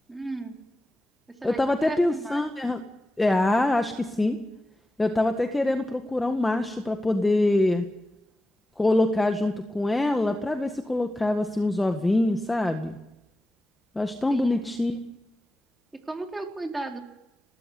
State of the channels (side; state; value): both; normal; correlation 0.93